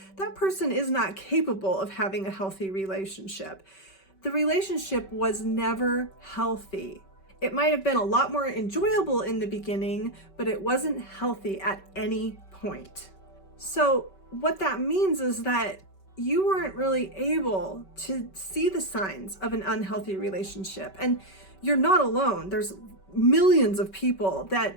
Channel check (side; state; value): right; late; 5.2 ms